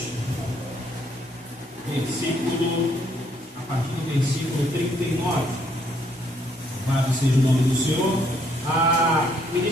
a partir do versículo 39. Louvado seja o nome do Senhor. A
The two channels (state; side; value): normal; both; correlation 0.69